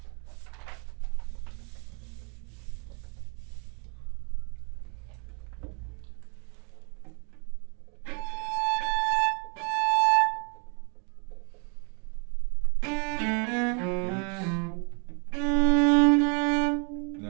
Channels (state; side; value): quieter; left; 36.8 dB